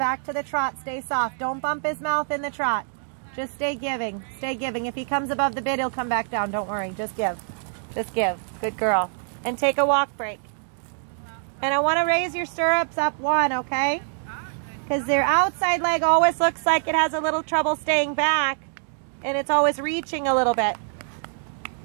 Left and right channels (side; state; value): left; silent; digital silence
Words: to the trot. Stay soft. Don't bump his mouth in the trot. Just stay giving. Stay giving. If he comes above the bit, he'll come back down. Don't worry. Just give. Just give. Good girl. And take a walk break. And I want to raise your stirrups up one, okay? Because their outside leg always looks like it has a little trouble staying back. And it's always reaching a little bit.